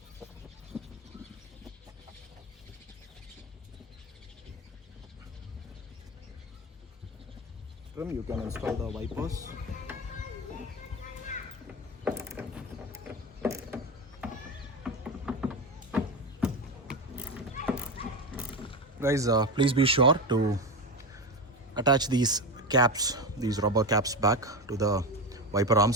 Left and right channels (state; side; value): normal; both; correlation 0.18